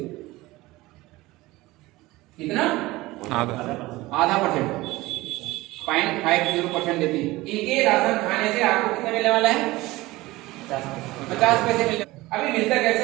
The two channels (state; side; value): quieter; left; 19.6 dB